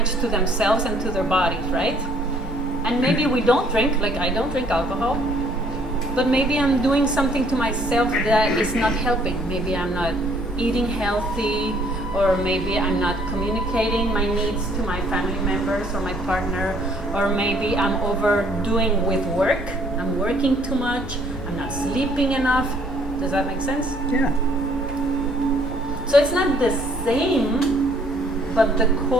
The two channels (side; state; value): both; normal; correlation 0.62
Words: to themselves and to their bodies, right? And maybe we don't drink, like I don't drink alcohol, but maybe I'm doing something to myself that is not helping. Maybe I'm not eating healthy, or maybe I'm not communicating my needs to my family members or my partner, or maybe I'm overdoing with work. I'm working too much, I'm not sleeping enough. Does that make sense? Yeah. So it's not the same, but the